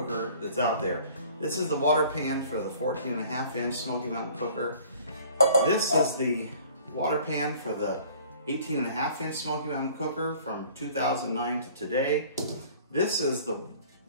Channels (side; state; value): both; inverted; correlation -0.51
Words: that's out there. This is the water pan for the 14.5-inch Smokey Mountain Cooker. This is the water pan for the 18.5-inch Smokey Mountain Cooker from 2009 to today. This is the